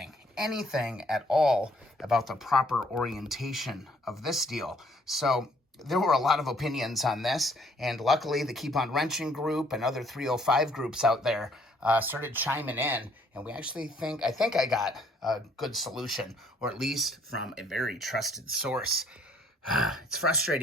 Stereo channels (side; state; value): both; normal; correlation 0.63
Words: at all about the proper orientation of this deal. So there were a lot of opinions on this, and luckily the Keep On Wrenching group and other 305 groups out there started chiming in, and we actually I think I got a good solution, or at least from a very trusted source. It's